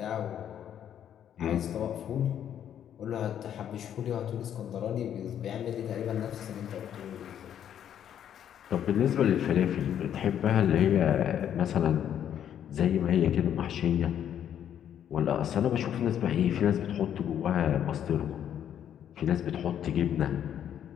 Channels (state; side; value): quieter; right; 9.8 dB